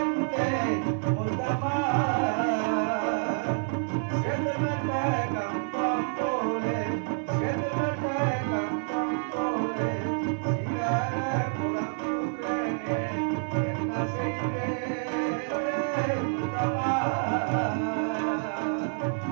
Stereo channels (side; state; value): left; silent; 59 dB below the other